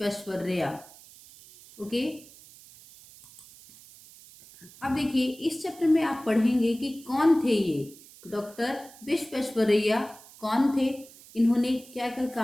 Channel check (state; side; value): noise; right; hiss, 21 dB below the sound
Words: ओके, अब देखिए इस चैप्टर में आप पढ़ेंगे कि कौन थे ये डॉक्टर विश्वेश्वरैया, कौन थे, इन्होंने क्या क्या